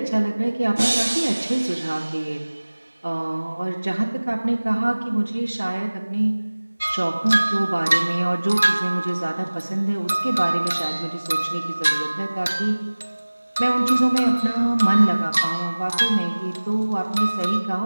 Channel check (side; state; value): both; inverted; correlation -1.00